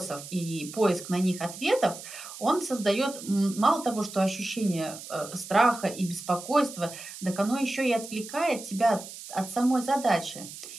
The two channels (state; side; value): noise; right; hiss, 13 dB below the sound